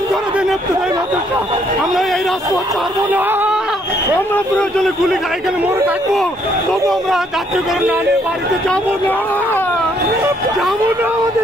করে দেন ইবতেদায়ী মাদ্রাসা। আমরা এই রাজপথ ছাড়বো না। আমরা প্রয়োজনে গুলি খাই, এখানে মরে থাকবো, তবু আমরা জাতীয়করণ না নিয়ে বাড়িতে যাবো না, যাবো না।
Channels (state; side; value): normal; both; correlation 0.68